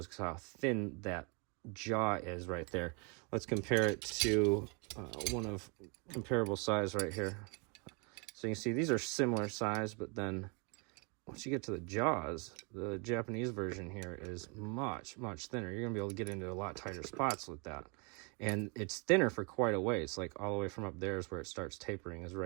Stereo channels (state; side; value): quieter; left; 33.3 dB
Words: how thin that jaw is right there. Let's compare it to one of comparable size right here. So you can see these are similar size, but then once you get to the jaws, the Japanese version here is much, much thinner. You're going to be able to get into a lot tighter spots with that. And it's thinner for quite a ways. Like all the way from up there is where it starts tapering, is